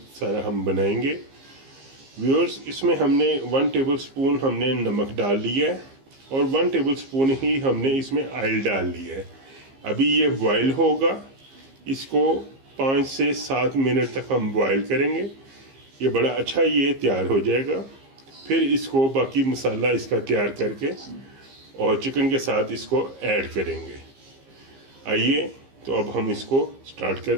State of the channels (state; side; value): late; left; 15 ms